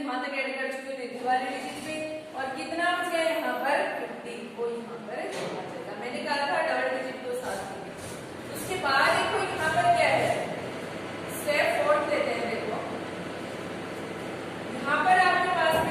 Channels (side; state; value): both; identical; correlation 1.00